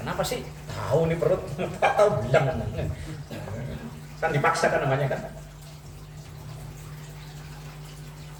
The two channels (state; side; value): identical; both; correlation 1.00